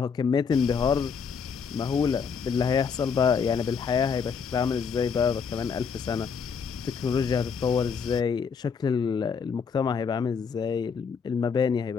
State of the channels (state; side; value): quieter; right; 6.1 dB